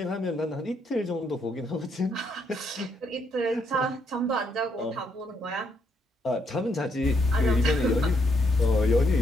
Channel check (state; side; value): normal; both; correlation 0.75